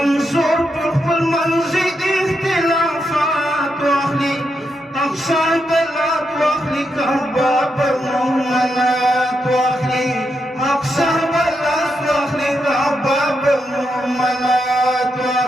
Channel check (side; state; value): both; normal; correlation 0.83